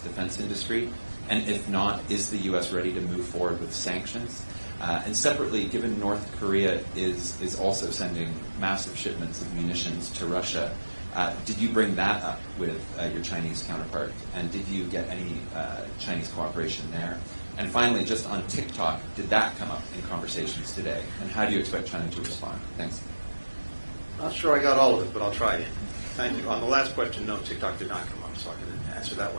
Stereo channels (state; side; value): inverted; both; correlation -1.00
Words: industry? And if not, is the U.S. ready to move forward with sanctions? And separately, given North Korea is also sending massive shipments of munitions to Russia, did you bring that up with your Chinese counterpart? And did you get any Chinese cooperation there? And finally, just on TikTok, did that come up in conversations today? And how do you expect China to respond? Thanks. Not sure I got all of it, but I'll try again. Thank you. On the last question, no, TikTok did not come up, so I can answer that